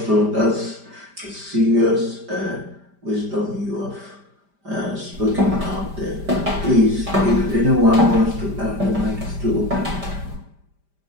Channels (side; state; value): left; late; 5.0 ms